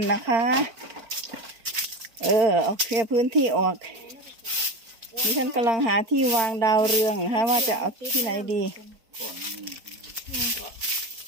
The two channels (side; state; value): left; late; 4.5 ms